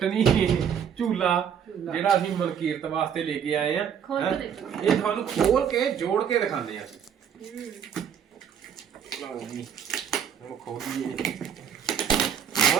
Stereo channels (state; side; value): quieter; left; 8.2 dB